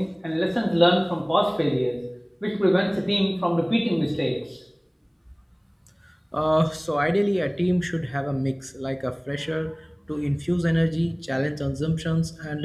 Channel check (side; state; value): both; identical; correlation 1.00